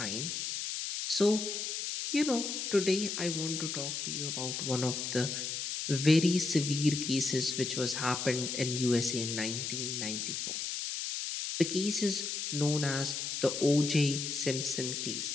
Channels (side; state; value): left; noise; hiss, 3 dB below the sound